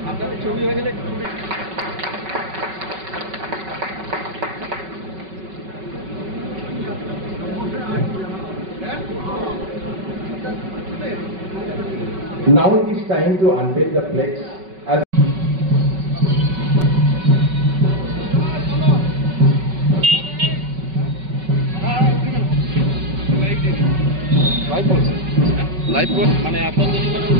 Now it is time to unveil the flex as live মানে এত দেরি করে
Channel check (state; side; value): late; left; 5.3 ms